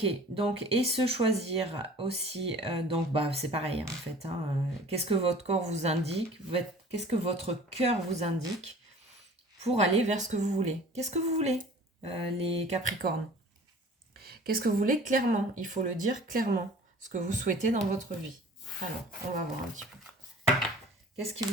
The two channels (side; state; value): both; normal; correlation 0.46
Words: donc, et se choisir aussi, donc bah c'est pareil en fait, hein, qu'est-ce que votre corps vous indique, qu'est-ce que votre cœur vous indique pour aller vers ce que vous voulez. Qu'est-ce que vous voulez, les Capricornes? Qu'est-ce que vous voulez clairement? Il faut le dire clairement, ce que vous souhaitez dans votre vie. Alors, on va voir un petit peu. Qu'est-ce qui